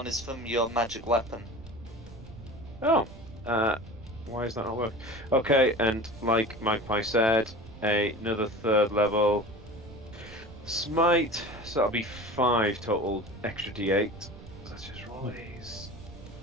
is from your magic weapon. Oh. Why is that not work? Okay, and like Magpie said, another third level smite. So that'll be 5 total extra d8. Let's just roll these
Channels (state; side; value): noise; right; rumble, 17 dB below the sound